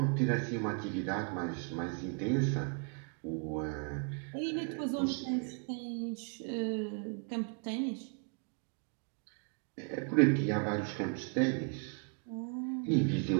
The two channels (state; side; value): quieter; left; 39.6 dB